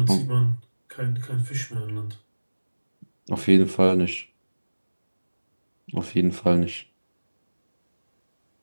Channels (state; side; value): inverted; both; correlation -1.00